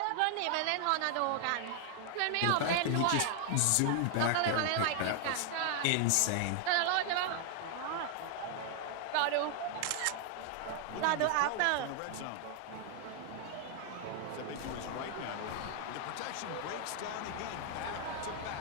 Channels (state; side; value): different; both; correlation 0.00